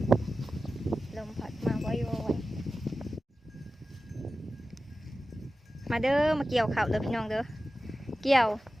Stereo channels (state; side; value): normal; both; correlation 0.94